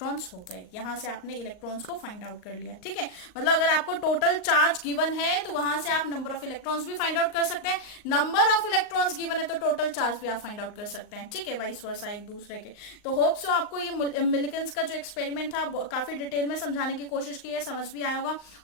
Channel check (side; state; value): right; late; 38 ms